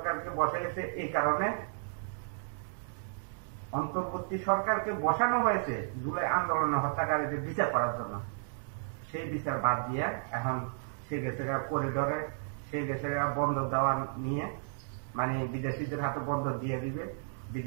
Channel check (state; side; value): silent; left; digital silence